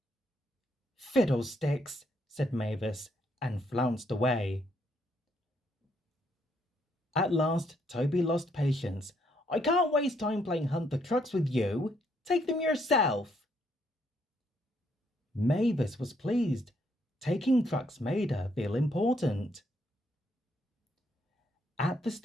"Fiddlesticks," said Mavis, and flounced away. At last, Toby lost patience. "I can't waste time playing hunt the trucks with you. Take them yourself." Mavis was pleased. Taking trucks made her feel important. At the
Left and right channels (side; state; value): both; normal; correlation 0.72